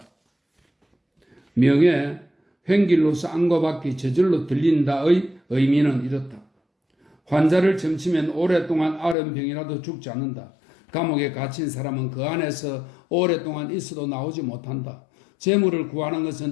명예, 횡길로서 안과 밖이 저절로 들린다의 의미는 이렇다. 환자를 점치면 오랫동안 앓은 병이라도 죽지 않는다. 감옥에 갇힌 사람은 그 안에서 오랫동안 있어도 나오지 못한다. 재물을 구하는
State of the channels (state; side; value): drops out; right; at 9.2 s